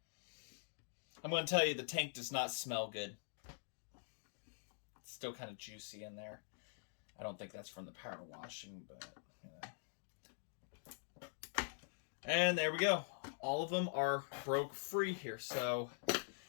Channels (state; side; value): silent; right; digital silence